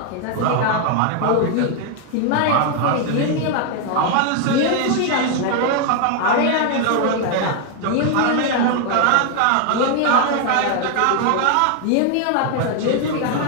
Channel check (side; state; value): both; different; correlation 0.00